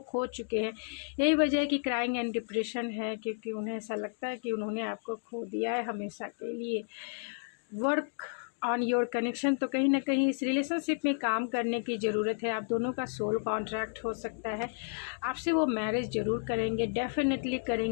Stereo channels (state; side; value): silent; right; digital silence